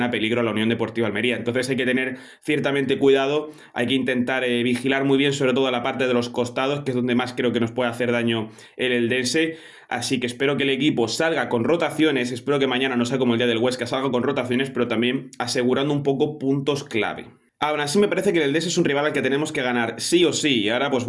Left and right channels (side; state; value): both; identical; correlation 1.00